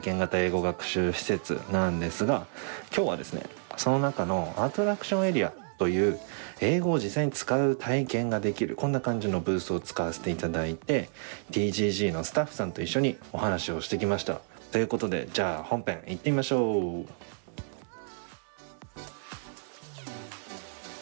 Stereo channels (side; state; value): left; silent; digital silence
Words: 験型英語学習施設なんですが、今日はですね、その中のアトラクションエリアという英語を実際に使う体験ができるこんな感じのブースを使わせていただいて TGG のスタッフさんと一緒にお話をしてきました。ということで、じゃあ本編行ってみましょう。